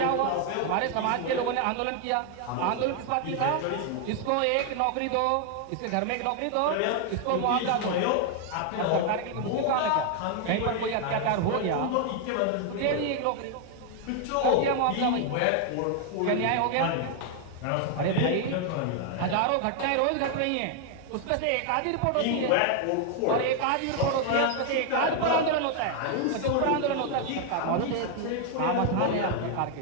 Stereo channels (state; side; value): different; both; correlation 0.00